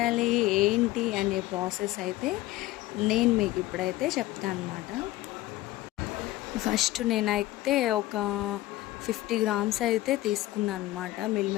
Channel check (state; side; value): quieter; right; 16.8 dB